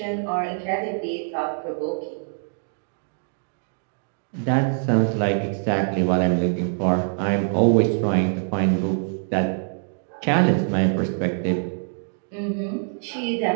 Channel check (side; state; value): left; silent; digital silence